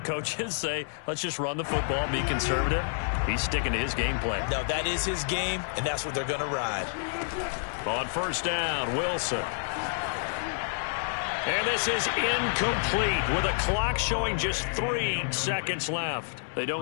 coaches say, let's just run the football, be conservative. He's sticking to his game plan. No, that is his game, and that's what they're going to ride. On 1st down, Wilson. And this is incomplete with a clock showing just 3 seconds left. They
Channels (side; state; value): right; silent; 59 dB below the other